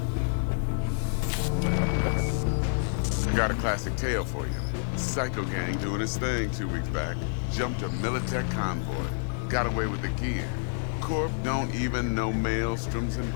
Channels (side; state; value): right; silent; digital silence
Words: Got a classic tale for you. Psycho gang doing its thing 2 weeks back. Jumped a Militech convoy. Got away with the gear. Corp don't even know Maelstrom's